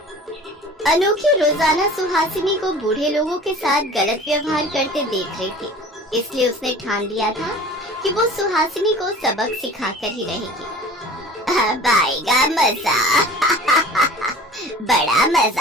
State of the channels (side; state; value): both; normal; correlation 0.42